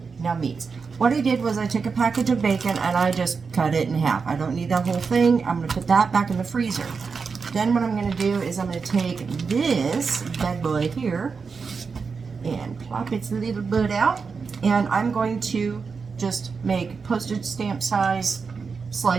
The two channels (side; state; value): left; quieter; 5.2 dB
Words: Now meats. What I did was I took a package of bacon and I just cut it in half. I don't need that whole thing. I'm going to put that back in the freezer. Then what I'm going to do is I'm going to take this bad boy here and plop its little bud out, and I'm going to just make postage stamp size